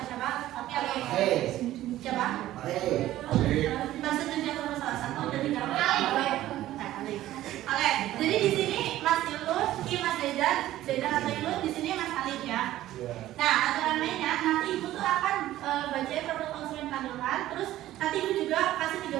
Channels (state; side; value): quieter; left; 14.4 dB